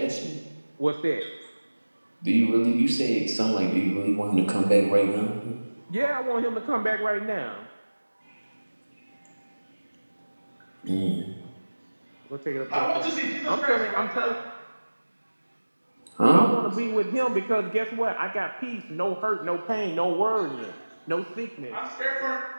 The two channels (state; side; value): inverted; both; correlation -1.00